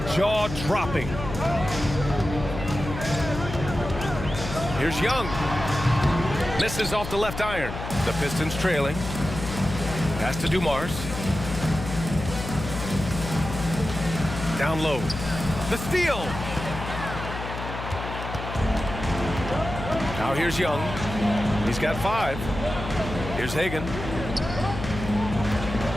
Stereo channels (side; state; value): left; noise; hum, 8 dB below the sound